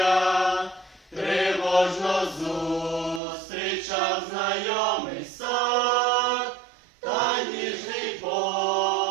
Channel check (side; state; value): left; drops out; at 3.2 s